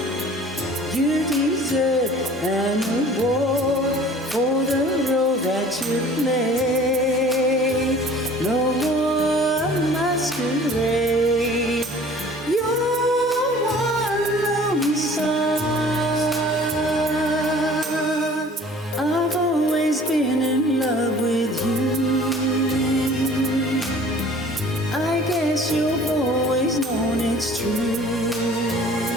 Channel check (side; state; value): both; normal; correlation 0.48